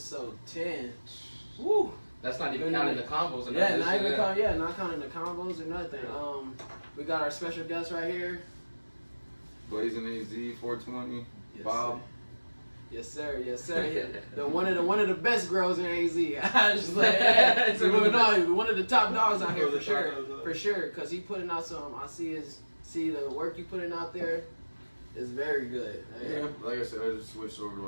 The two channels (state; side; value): inverted; both; correlation -1.00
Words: 10. Woo! That's not even counting the combos. And Yeah, not counting the combos or nothing. We got our special guest right here. Blazin HZ 420. Yes, Bob. Sir. Yes, sir. Yes, sir. The one of the best girls in AZ. I just like, one of the top dogs out here for sure. For sure, cause he putting out some. I see the work you putting out there is very good. Yeah, like I said, I just switched over to